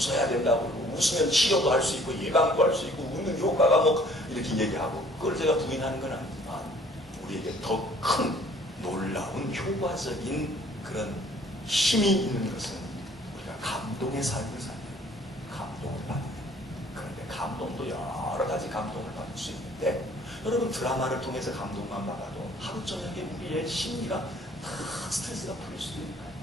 된다고 그러고 웃으면 치료도 할 수 있고 예방도 할 수 있고 웃는 효과가 이렇게 얘기하고 그걸 제가 부인하는 건 아니지만 우리에게 더 큰 놀라운 효과적인 그런 힘이 있는 것은 우리가 감동의 삶을 사는 감동을 받는 그런데 감동도 여러 가지 감동을 받을 수 있는데 여러분 드라마를 통해서 감동만 받아도 하루 저녁에 우리의 심리가 다 스트레스가 풀릴 수도 있는 거예요.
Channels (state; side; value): normal; both; correlation 0.56